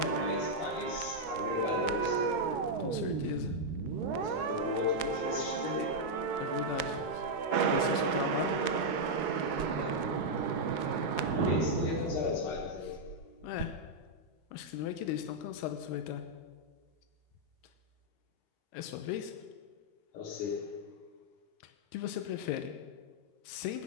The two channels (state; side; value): late; right; 13 ms